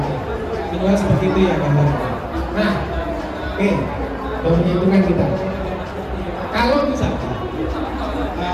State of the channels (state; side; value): identical; both; correlation 1.00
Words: Tinggal seperti itu ya gambarnya. Nah, oke, hitungan kita. Kalau misalkan